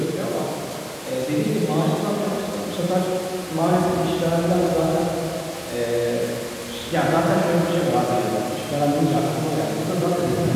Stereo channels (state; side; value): identical; both; correlation 1.00